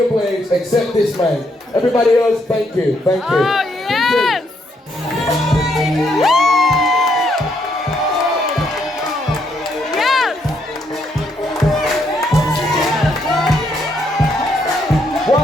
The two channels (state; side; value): normal; both; correlation 0.74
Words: place except this man. Everybody else, thank you. Oh, yes! Yes!